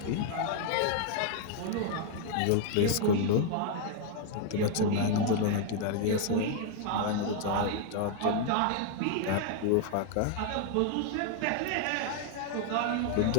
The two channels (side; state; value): both; different; correlation 0.00